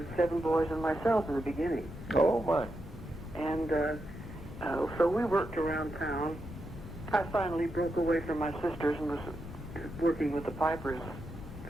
7 boys and myself in the beginning. Oh, my. And so we worked around town. I finally broke away from my sisters and was working with the Pipers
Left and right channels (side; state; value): left; noise; rumble, 13 dB below the sound